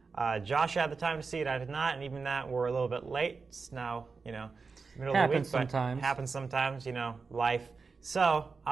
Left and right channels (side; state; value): left; quieter; 4.7 dB